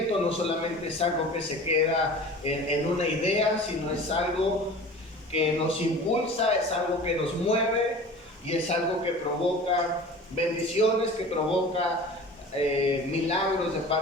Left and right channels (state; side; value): normal; both; correlation 0.40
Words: no solamente es algo que se queda en una idea, sino es algo que nos impulsa, es algo que nos mueve y es algo que provoca bendiciones, que provoca milagros de